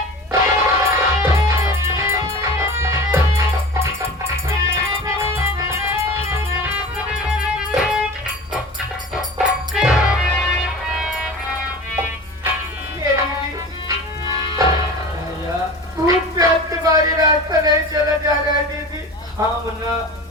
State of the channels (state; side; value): normal; both; correlation 0.36